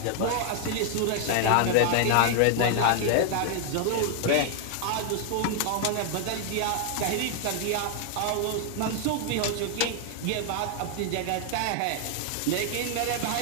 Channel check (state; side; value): different; both; correlation 0.00